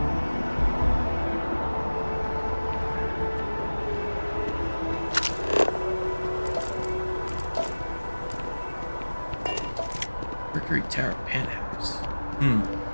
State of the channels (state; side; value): inverted; both; correlation -1.00